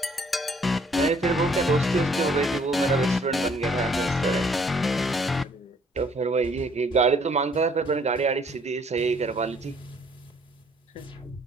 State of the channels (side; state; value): both; normal; correlation 0.62